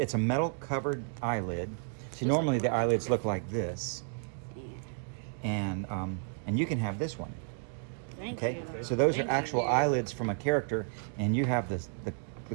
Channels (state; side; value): silent; left; 56 dB below the other